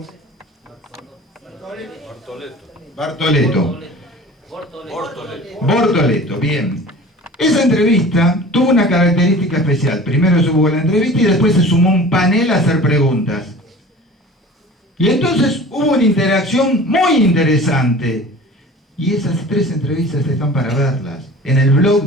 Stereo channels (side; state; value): both; normal; correlation 0.41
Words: Bartoleto, bien. Esa entrevista tuvo una característica especial. Primero se hubo la entrevista y después se sumó un panel a hacer preguntas. Y entonces hubo una interacción muy interesante. Y esas tres entrevistas están para verlas en el blog